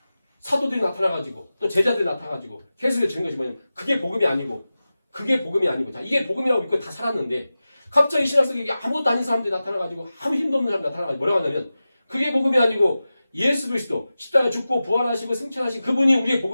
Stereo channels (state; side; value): inverted; both; correlation -0.94